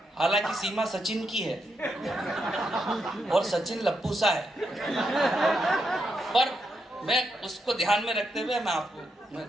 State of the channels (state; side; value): normal; both; correlation 0.82